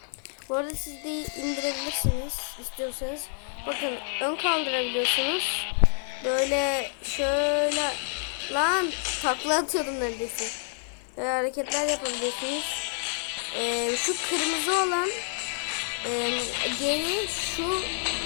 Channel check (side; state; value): right; silent; digital silence